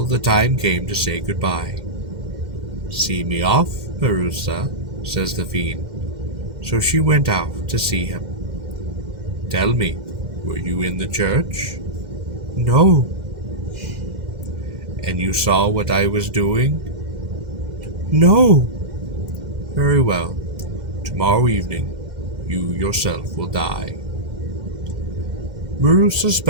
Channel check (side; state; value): left; late; 2.0 ms